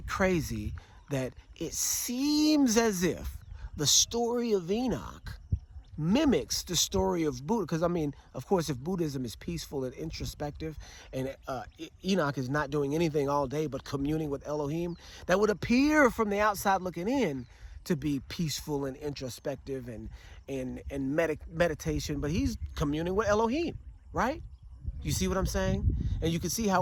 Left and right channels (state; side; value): identical; both; correlation 1.00